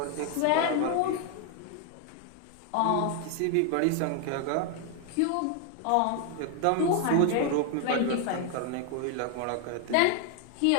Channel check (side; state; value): both; different; correlation 0.01